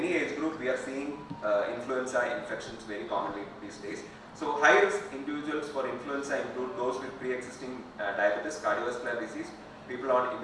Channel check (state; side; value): identical; both; correlation 1.00